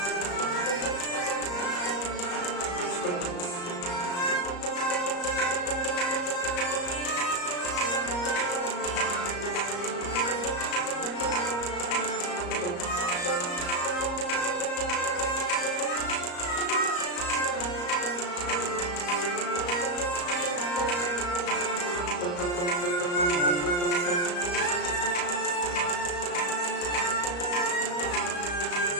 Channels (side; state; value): right; late; 34 ms